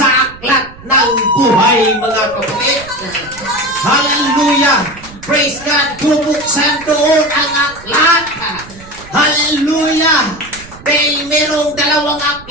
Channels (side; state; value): right; noise; rumble, 19 dB below the sound